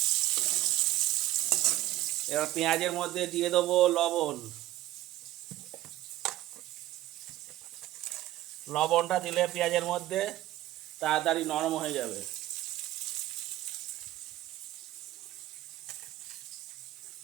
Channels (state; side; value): quieter; left; 15.4 dB